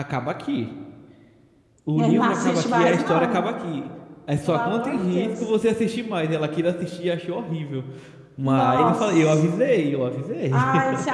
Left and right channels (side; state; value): both; identical; correlation 1.00